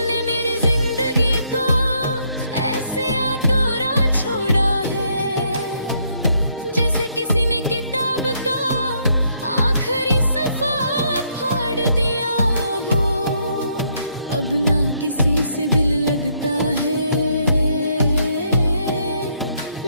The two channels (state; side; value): inverted; both; correlation -0.72